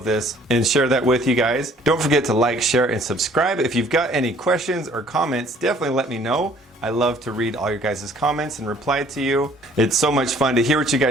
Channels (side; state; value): both; normal; correlation 0.57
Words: this and share that with you guys. Don't forget to like, share, and subscribe. If you've got any questions or comments, definitely let me know. I love to read all your guys' comments and reply to you. It's so much fun to hear what you